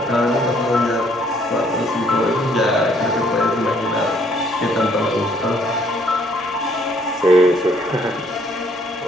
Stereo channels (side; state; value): both; normal; correlation 0.65